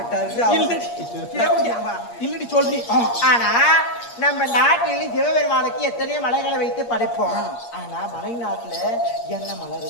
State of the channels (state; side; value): late; right; 8.5 ms